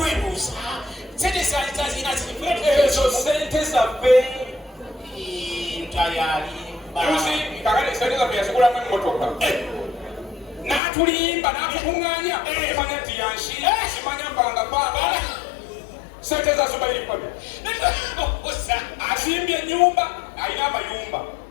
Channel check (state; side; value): drops out; right; at 10.8 s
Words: sente zazina ezo sente zaffe lutaaya ali kakale sente zaffe yazigulamu emmotoka n'atulimba n'atukuŋŋaanya kimanya nti yanshira kimanya mbanga kwagala sente za Zubair paka asimbye ennyumba alina amayumba